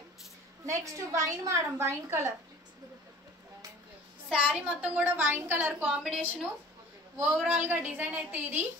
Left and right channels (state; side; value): normal; both; correlation 0.46